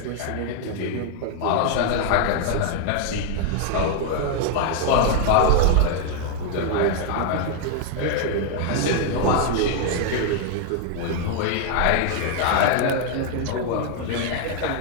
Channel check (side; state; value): both; different; correlation 0.00